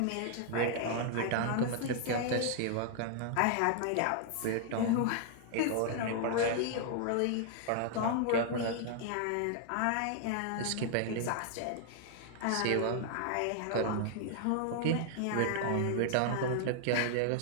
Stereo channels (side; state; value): both; different; correlation 0.00